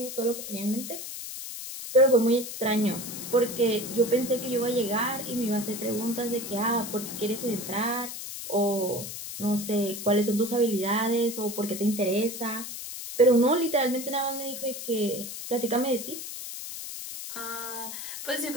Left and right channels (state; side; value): noise; left; hiss, 8 dB below the sound